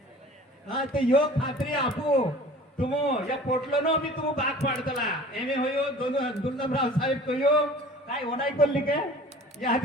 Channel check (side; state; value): both; normal; correlation 0.45